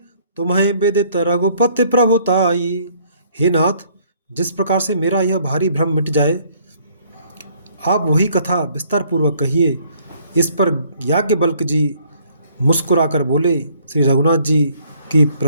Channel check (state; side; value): inverted; both; correlation -0.63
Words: तुम्हें विदित रघुपति प्रभुताई। हे नाथ, जिस प्रकार से मेरा यह भारी भ्रम मिट जाए, आप वही कथा विस्तार पूर्वक कहिए। इस पर याज्ञवल्क्य जी मुस्कुराकर बोले, श्री रघुनाथ जी की